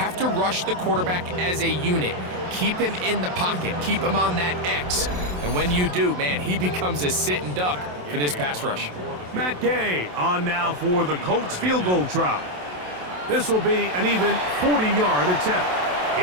to rush the quarterback as a unit. Keep him in the pocket. Keep him on that X. And when you do, man, he becomes a sit-and duck for this pass rush. Matt Gay on now for the Colts field goal try. This will be an even 40-yard attempt.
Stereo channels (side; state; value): left; late; 27 ms